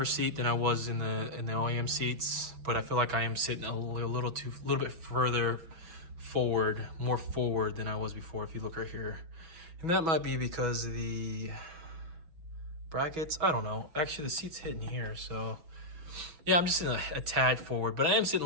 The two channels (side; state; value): left; late; 6.1 ms